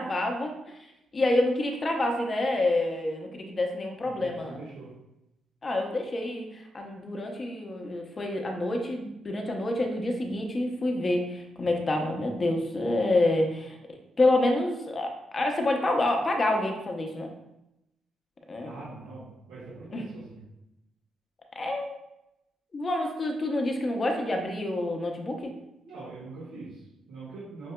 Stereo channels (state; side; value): normal; both; correlation 0.88